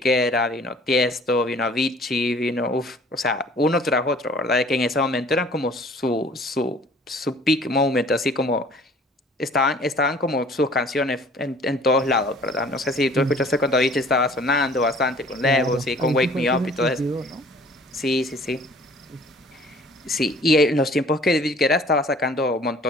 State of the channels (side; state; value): both; normal; correlation 0.52